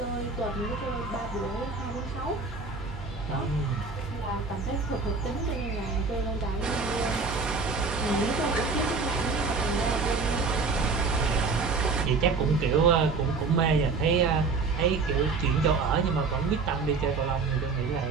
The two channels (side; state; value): left; quieter; 4.4 dB